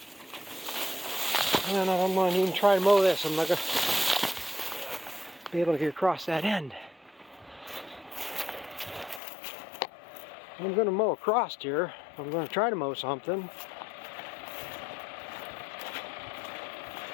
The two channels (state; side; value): drops out; right; at 9.2 s